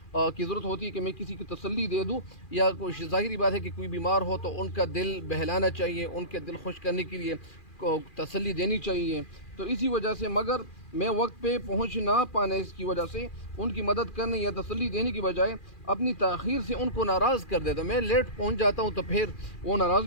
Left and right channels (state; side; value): late; right; 2.4 ms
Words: کی ضرورت ہوتی ہے کہ میں کسی کی تسلی دے دوں، یا کوئی ظاہری بات ہے کہ کوئی بیمار ہو تو ان کا دل بہلانا چاہیے، ان کے دل خوش کرنے کے لیے تسلی دینی چاہیے۔ تو اسی وجہ سے مگر میں وقت پہ پہنچ نہ پانے کی وجہ سے ان کی مدد کرنے یا تسلی دینے کی بجائے اپنی تاخیر سے ان کو ناراض کر دیتا ہوں، میں لیٹ پہنچ جاتا ہوں تو پھر وہ ناراض